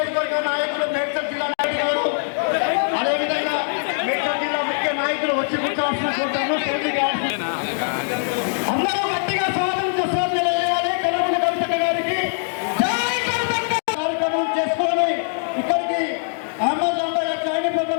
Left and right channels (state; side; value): silent; right; digital silence